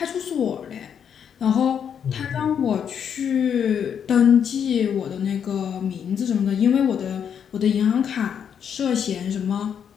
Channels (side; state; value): right; quieter; 8.0 dB